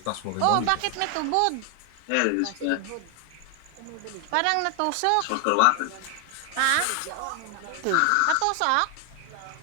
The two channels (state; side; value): different; both; correlation 0.00